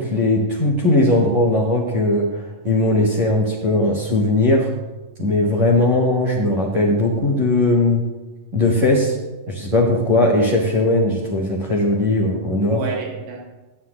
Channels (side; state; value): left; late; 11 ms